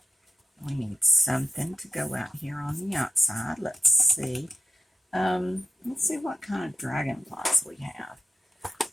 We need something to go out here on the outside. Let's see. Let's see what kind of dragonflies we have.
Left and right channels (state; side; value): normal; both; correlation 0.91